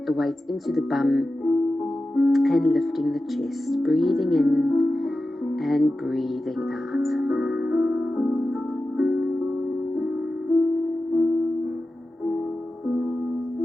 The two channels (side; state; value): both; normal; correlation 0.93